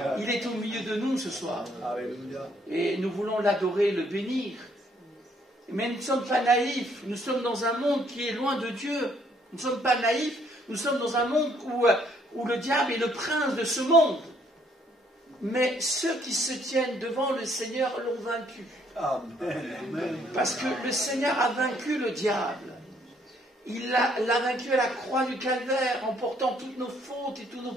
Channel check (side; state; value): both; normal; correlation 0.66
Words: Il est au milieu de nous ce soir. Alléluia. Et nous voulons l'adorer, le bénir. Mais nous ne sommes pas naïfs. Nous sommes dans un monde qui est loin de Dieu. Nous ne sommes pas naïfs. Nous sommes dans un monde où le diable est le prince de ce monde. Mais ceux qui se tiennent devant le Seigneur l'ont vaincu. Amen. Amen. Parce que le Seigneur a vaincu le diable. Il l'a vaincu à la croix du calvaire en portant toutes nos fautes et tous nos